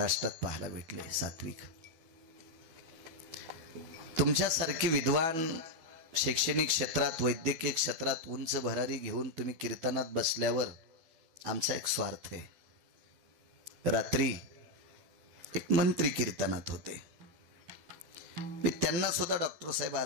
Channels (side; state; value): left; late; 12 ms